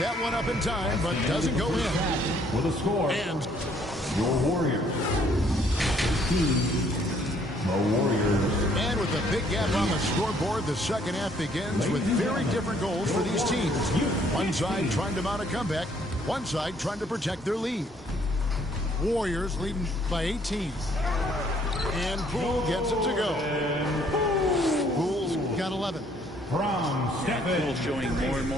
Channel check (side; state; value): both; normal; correlation 0.64